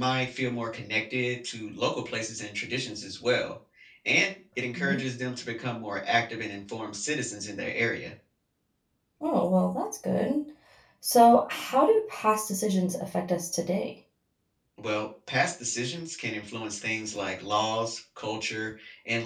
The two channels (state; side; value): identical; both; correlation 1.00